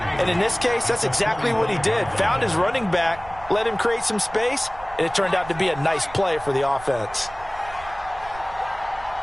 And in this case, that's exactly what he did. Found his running back, let him create some space, and it turned out to be a nice play for the offense.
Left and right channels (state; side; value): noise; right; rumble, 18 dB below the sound